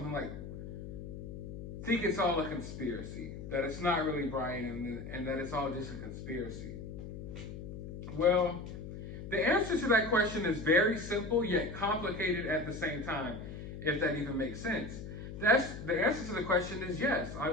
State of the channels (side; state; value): left; noise; hum, 9 dB below the sound